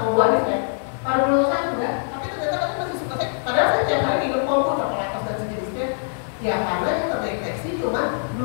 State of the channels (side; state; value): right; silent; digital silence